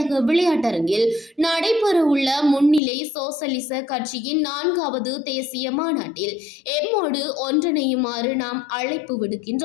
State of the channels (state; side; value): drops out; right; at 2.8 s